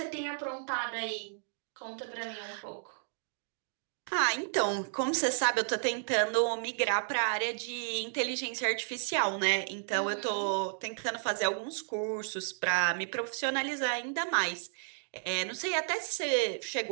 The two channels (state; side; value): silent; left; digital silence